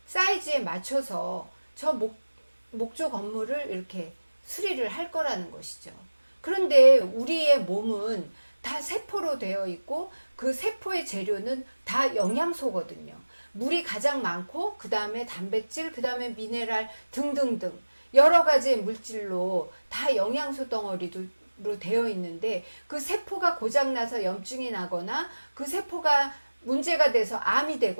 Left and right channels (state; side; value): inverted; both; correlation -1.00